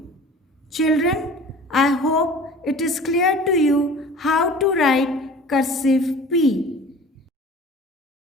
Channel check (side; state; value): both; normal; correlation 0.42